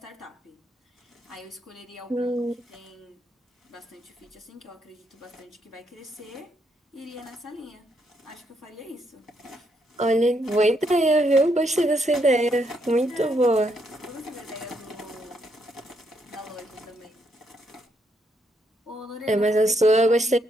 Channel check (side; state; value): both; normal; correlation 0.76